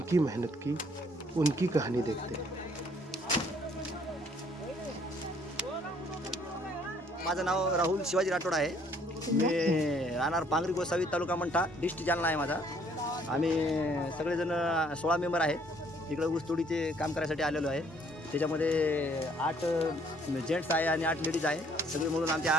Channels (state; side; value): normal; both; correlation 0.62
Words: मेहनत की, उनकी कहानी देखते हैं। माझं नाव राहुल शिवाजी राठोड आहे। मी राहणार पांगरी गोसावी तालुका मंठा डिस्ट्रिक्ट जालना आहे माझा। आम्ही सगळेजण 16 मेंबर आहे। इकडे ऊसतोडीचे काम करायसाठी आलेलो आहे। त्याच्यामध्ये 8 जेंट्स आहे आणि 8 लेडीज आहे। सगळे मिळून आमचे